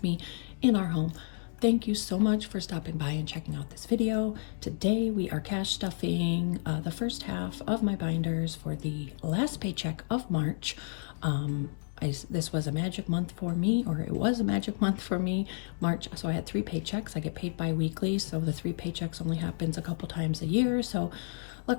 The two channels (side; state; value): right; silent; digital silence